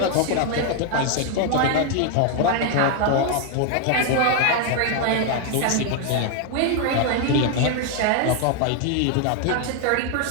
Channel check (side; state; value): both; different; correlation 0.00